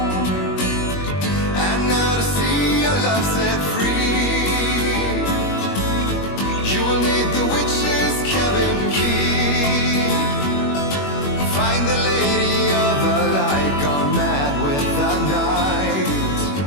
And now to see your love set free, you will need the witch's cabin key. Find the lady of the light, gone mad with the night.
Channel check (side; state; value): right; late; 21 ms